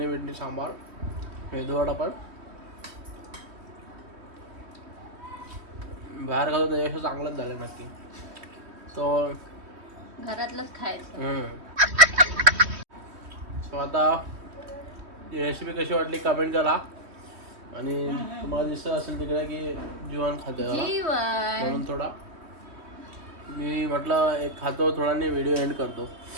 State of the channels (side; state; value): left; late; 3.1 ms